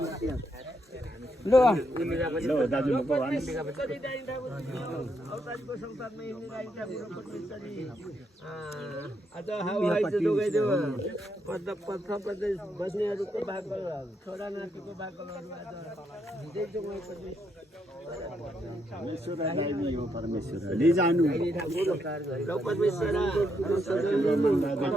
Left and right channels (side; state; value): both; normal; correlation 0.78